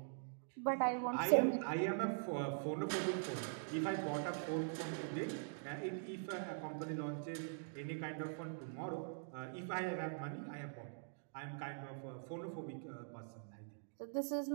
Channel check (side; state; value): left; silent; digital silence